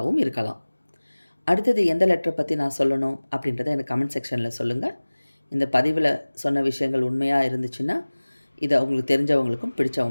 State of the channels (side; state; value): both; inverted; correlation -1.00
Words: இருக்கலாம். அடுத்தது எந்த லெட்டரை பற்றி நான் சொல்லணும் அப்படின்றத எனக்கு கமெண்ட் செக்ஷனில் சொல்லுங்கள். இந்த பதிவில் சொன்ன விஷயங்கள் உண்மையாக இருந்துச்சுன்னா இதை உங்களுக்கு தெரிஞ்சவங்களுக்கும்